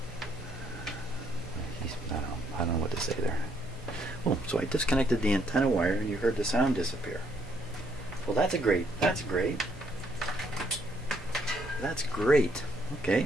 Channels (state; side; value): normal; both; correlation 0.70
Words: I don't know what to say there. Oh, so I disconnected the antenna wire and you heard the sound disappear. Well, that's great. That's great.